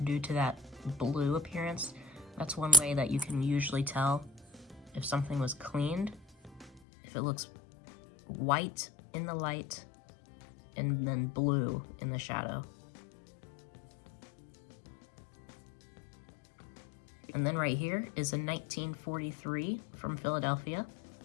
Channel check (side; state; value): right; drops out; at 6.8 s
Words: due to that blue appearance. That's one way that you can usually tell if something was cleaned, if it looks white in the light and then blue in the shadow. And then right here is a 1943 from Philadelphia